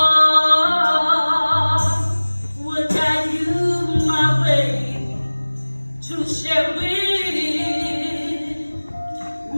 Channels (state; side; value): inverted; both; correlation -1.00